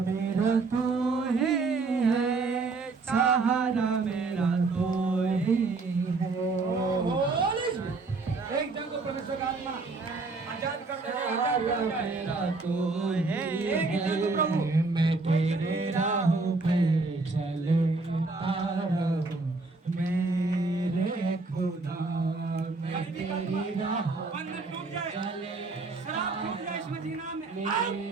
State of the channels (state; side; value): quieter; left; 3.8 dB